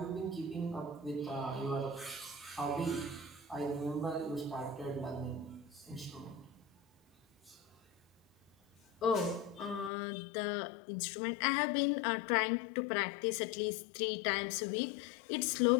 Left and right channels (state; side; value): drops out; right; at 9.9 s